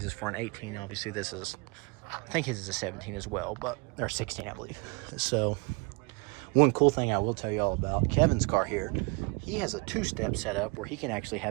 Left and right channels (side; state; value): left; quieter; 29.6 dB